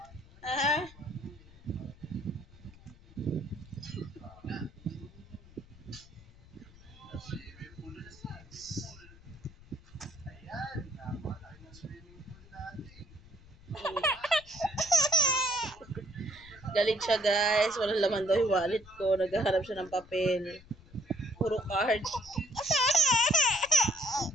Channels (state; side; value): noise; left; rumble, 22 dB below the sound